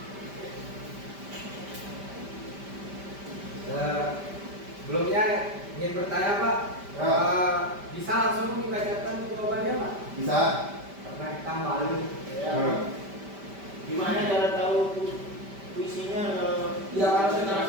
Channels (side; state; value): left; late; 5.1 ms